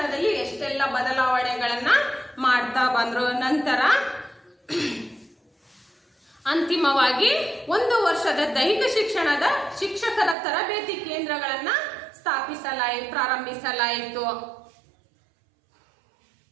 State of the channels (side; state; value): left; drops out; at 10.4 s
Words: ಎಷ್ಟೆಲ್ಲ ಬದಲಾವಣೆಗಳನ್ನ ಮಾಡ್ತಾ ಬಂದ್ರು. ನಂತರ ಅಂತಿಮವಾಗಿ 1 ವರ್ಷದ ದೈಹಿಕ ಶಿಕ್ಷಣದ ಶಿಕ್ಷಕರ ತರಬೇತಿ ಕೇಂದ್ರಗಳನ್ನ ಪ್ರಾರಂಭಿಸಲಾಯಿತು.